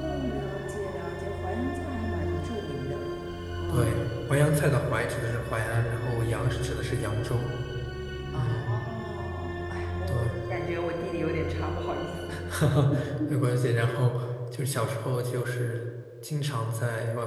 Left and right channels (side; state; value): both; identical; correlation 1.00